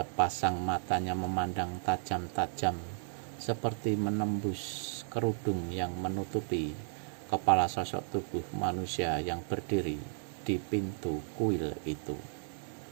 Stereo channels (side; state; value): left; silent; digital silence